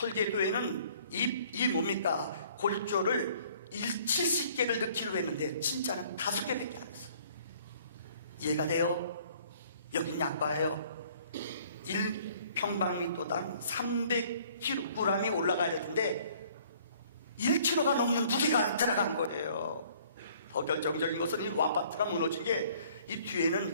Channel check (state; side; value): inverted; both; correlation -0.57